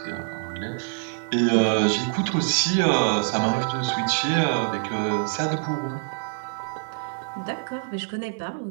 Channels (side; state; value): left; silent; 62 dB below the other